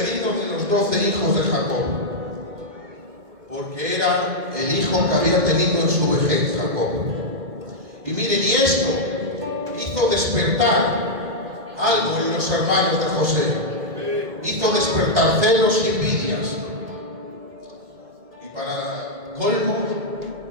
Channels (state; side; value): late; left; 2.0 ms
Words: de los 12 hijos de Jacob, porque era el hijo que había tenido en su vejez Jacob. Y miren, y esto hizo despertar algo en los hermanos de José, hizo despertar celos y envidias. Y para colmo,